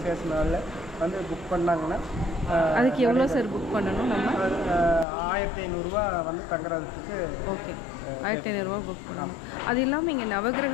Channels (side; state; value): right; drops out; at 5.1 s